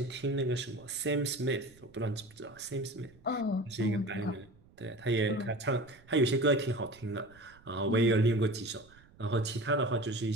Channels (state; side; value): noise; right; rumble, 26 dB below the sound